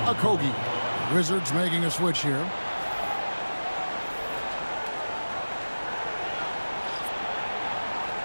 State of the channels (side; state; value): both; inverted; correlation -1.00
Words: Okogie. Wizards making a switch here.